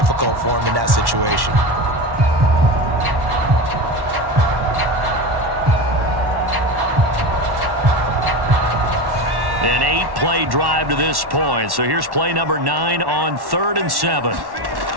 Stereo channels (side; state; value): left; late; 1.1 ms